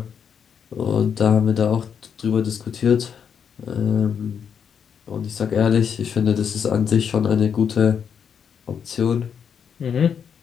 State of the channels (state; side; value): quieter; right; 7.4 dB